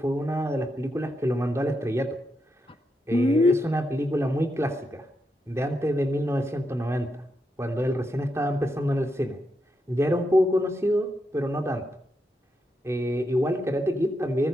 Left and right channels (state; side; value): normal; both; correlation 0.84